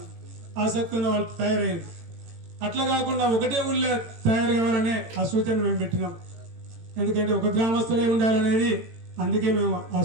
ఆసక్తి ఉన్న వాళ్ళు తయారైంది. అట్లా కాకుండా ఒకటే ఊళ్ళో తయారు కావాలనే ఆ సూచన మేము పెట్టినాం. ఎందుకంటే ఒక గ్రామస్తులే ఉండాలనేది, అందుకే మేము ఆ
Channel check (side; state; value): left; late; 18 ms